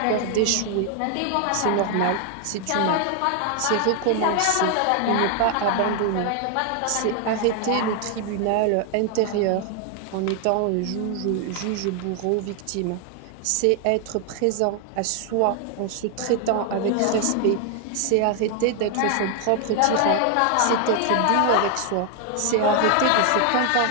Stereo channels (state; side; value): different; both; correlation 0.00